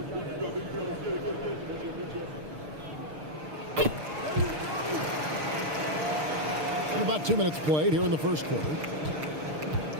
And about 2 minutes played here in the first quarter.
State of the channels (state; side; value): late; left; 6.6 ms